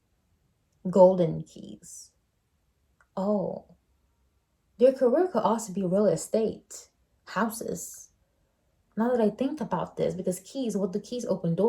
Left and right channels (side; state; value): both; identical; correlation 1.00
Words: Golden keys. Oh, their career could also be real estate, houses. Now that I think about this, because keys, what the keys open